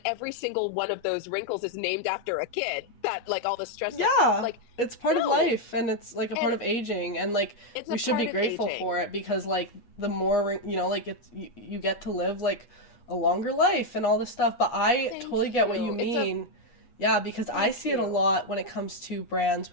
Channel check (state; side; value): late; right; 8.3 ms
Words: every single one of those wrinkles is named after a kid, that, like, all the stress that, Yeah. like, It's part of no. life and it's like a part And of aging and like it's we a should be part of grateful for aging. it because like the more like you get to live like a longer life and all this stuff, but I Thank totally get what you you. mean. Yeah, because I Thank see it a you. lot when it comes to brands